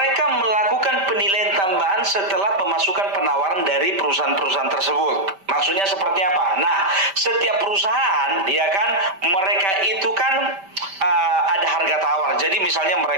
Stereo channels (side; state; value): left; late; 5.1 ms